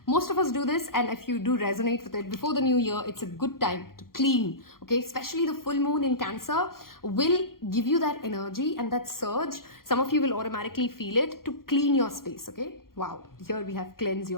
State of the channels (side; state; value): right; late; 0.92 ms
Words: Most of us do this, and if you do resonate with it, before the new year, it's a good time to clean, okay? Especially the full moon in Cancer will give you that energy and that surge. Some of you will automatically feel it to clean your space, okay? Wow, here we have cleanse